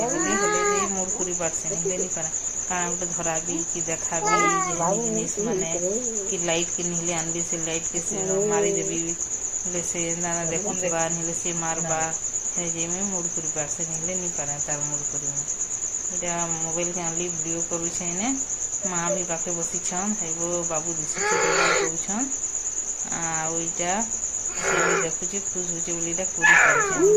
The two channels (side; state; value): both; identical; correlation 1.00